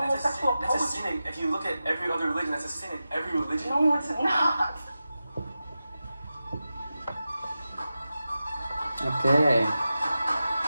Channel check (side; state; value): both; inverted; correlation -0.93